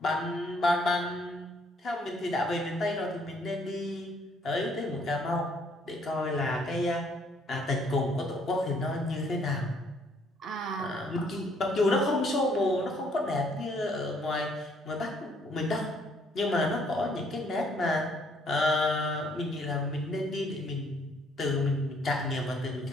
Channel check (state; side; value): normal; both; correlation 0.65